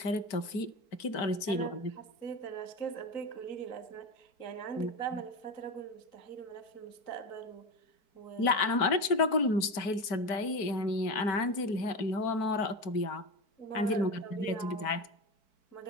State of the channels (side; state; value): right; late; 4.6 ms